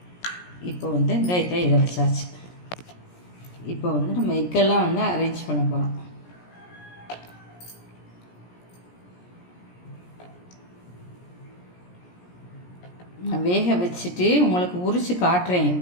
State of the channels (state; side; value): late; right; 17 ms